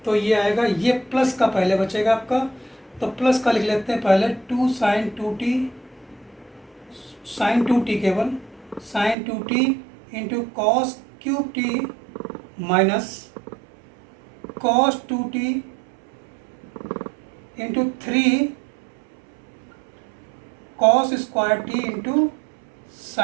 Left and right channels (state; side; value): drops out; left; at 9.2 s